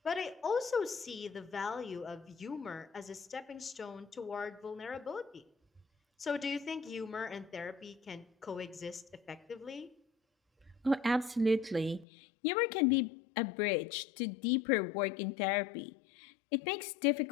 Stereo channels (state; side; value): drops out; right; at 12.1 s